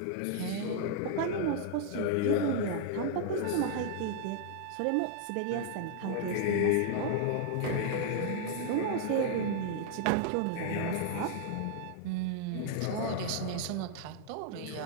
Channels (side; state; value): both; different; correlation 0.00